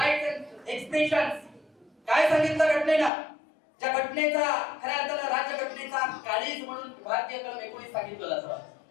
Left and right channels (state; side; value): drops out; right; at 3.1 s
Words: and expression. काय सांगितलं घटनेनं? ज्या घटनेचा खऱ्या अर्थानं राज्यघटनेचा काळीज म्हणून भारतीय कलम 19 सांगितलं जातं.